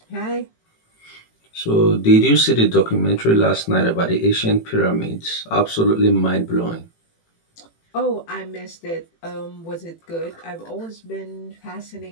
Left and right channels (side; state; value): right; late; 18 ms